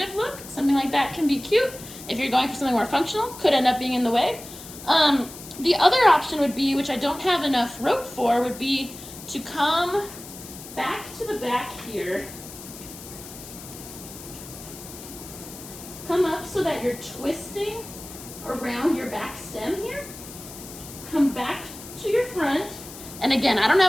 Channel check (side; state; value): left; noise; hiss, 14 dB below the sound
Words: look, something like that can be cute. If you're going for something more functional, could end up being in the way. The other option would be, which I don't have enough rope for, would be to come back to the back here. Come up so that you're twisting around your back stem here. Come back to your front. And again, I don't